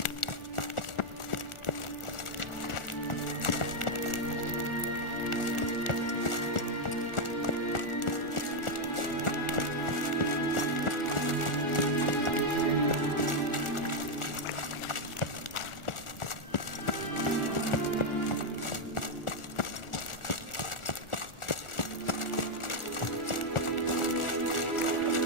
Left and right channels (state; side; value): late; right; 1.4 ms